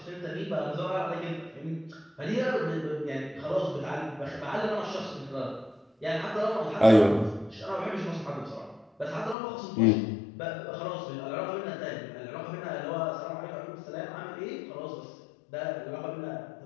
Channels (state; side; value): drops out; right; at 9.3 s